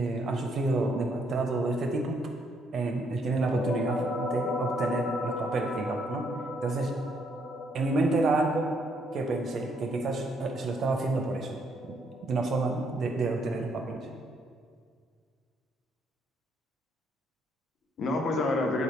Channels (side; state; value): both; normal; correlation 0.71